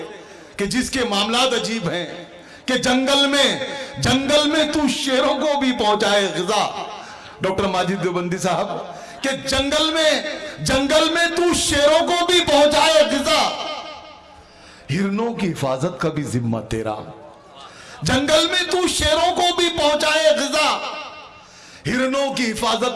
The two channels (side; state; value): both; identical; correlation 1.00